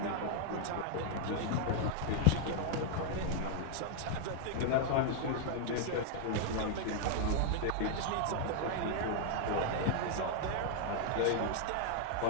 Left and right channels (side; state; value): both; different; correlation -0.01